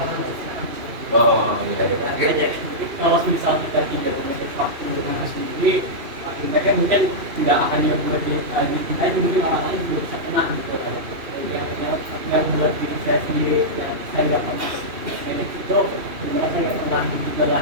Oh iya. Jadi kalau misal kita tidak memiliki waktu dengan sendiri, akhirnya mungkin tidak akan lebih dicintai, mungkin orang lain juga bisa kena gitu. Yang buat diri saya sendiri, yang saya nggak pernah manage itu, sebenarnya saya nggak pernah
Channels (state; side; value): late; left; 2.8 ms